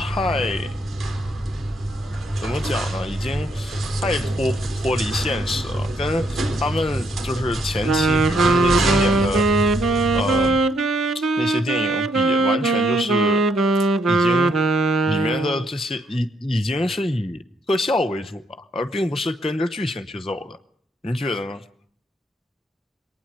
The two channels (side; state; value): both; normal; correlation 0.73